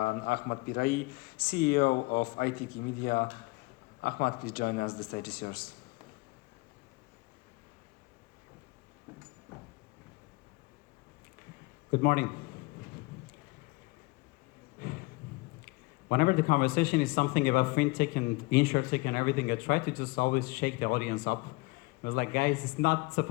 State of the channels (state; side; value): quieter; right; 24.8 dB